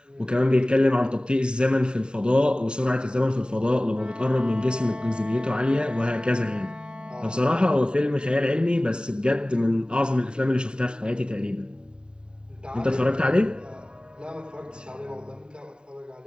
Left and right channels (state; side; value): late; left; 0.048 ms